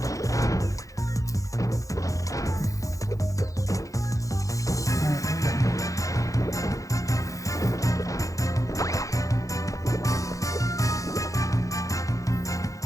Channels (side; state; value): right; late; 0.16 ms